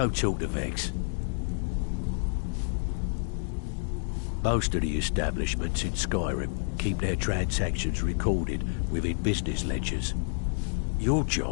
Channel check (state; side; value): silent; right; digital silence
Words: talk to Vex. Most of the establishments in Skyrim keep their transactions recorded within business ledgers. Your